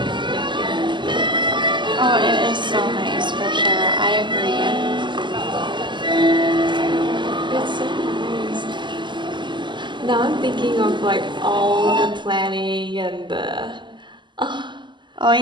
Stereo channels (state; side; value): late; left; 0.22 ms